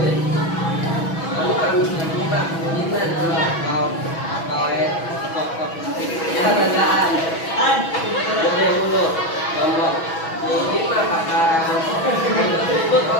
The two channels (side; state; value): right; late; 6.1 ms